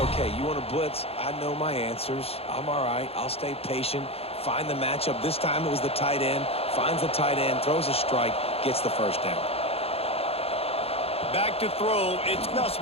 okay. You want to blitz? I know my answers. I'm all right. I'll stay patient. Find the matchup. This time it was the tight end. Finds the tight end, throws a strike, gets the first down. Back to throw. It's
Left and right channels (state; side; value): late; right; 0.29 ms